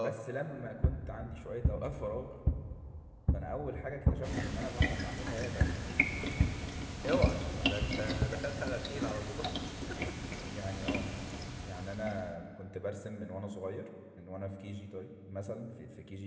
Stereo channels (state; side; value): identical; both; correlation 1.00